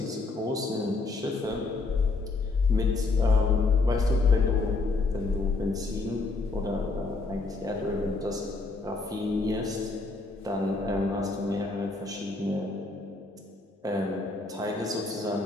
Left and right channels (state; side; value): quieter; right; 3.5 dB